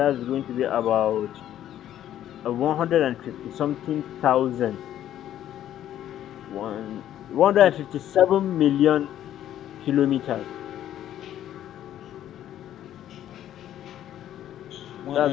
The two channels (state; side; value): quieter; right; 11.6 dB